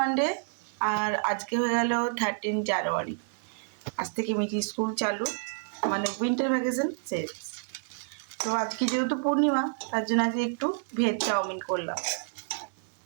আর আজকে হয়ে গেল 13 জানুয়ারি। আজ থেকে মিঠি স্কুল চালু, মানে উইন্টার ভ্যাকেশন শেষ। তো আজকে যেহেতু পূর্ণিমা, তার জন্য আজকে একটু ভেজ চাউমিন করলাম।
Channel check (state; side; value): silent; left; 58 dB below the other